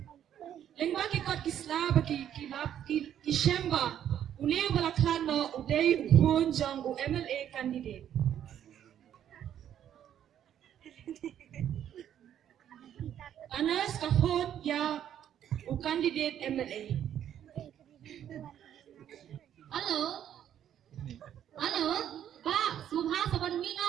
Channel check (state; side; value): quieter; left; 10.2 dB